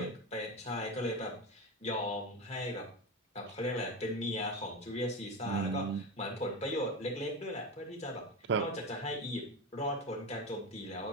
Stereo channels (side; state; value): both; normal; correlation 0.20